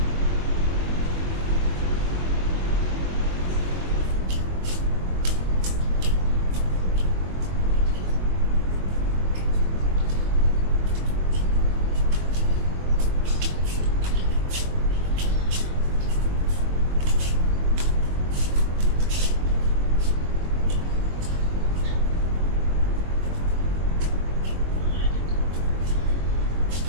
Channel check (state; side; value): late; left; 22 ms